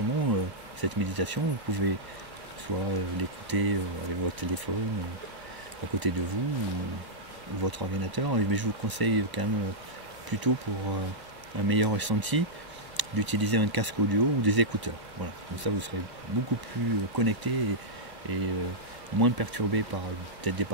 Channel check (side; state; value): left; late; 1.0 ms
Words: cette méditation, vous pouvez soit l'écouter avec votre téléphone à côté de vous ou votre ordinateur, mais je vous conseille quand même plutôt pour un meilleur ressenti d'utiliser un casque audio ou des écouteurs. Voilà. Comme ça vous serez beaucoup plus connecté et moins perturbé par peut-être des